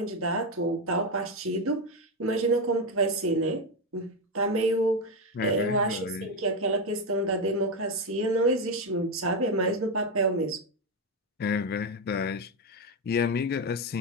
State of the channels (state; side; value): normal; both; correlation 0.09